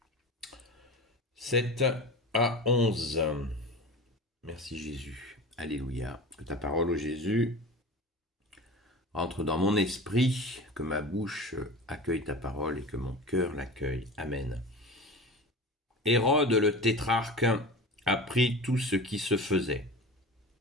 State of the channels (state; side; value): normal; both; correlation 0.33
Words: à 11. Merci Jésus. Alléluia. Que ta parole, ô Jésus, entre dans mon esprit, que ma bouche accueille ta parole et que mon cœur l'accueille. Amen. Hérode le tétrarque apprit tout ce qui se faisait.